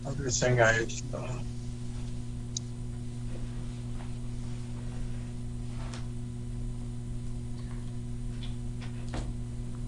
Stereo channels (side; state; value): both; identical; correlation 1.00